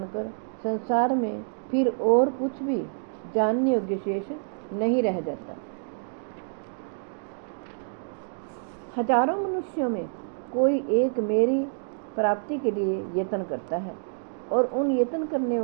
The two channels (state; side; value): silent; left; digital silence